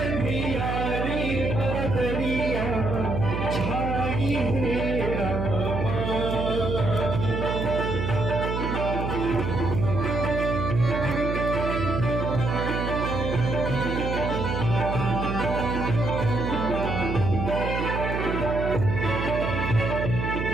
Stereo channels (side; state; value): right; noise; hum, 2 dB below the sound